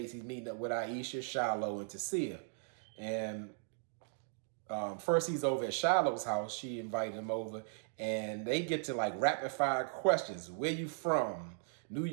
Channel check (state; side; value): silent; left; digital silence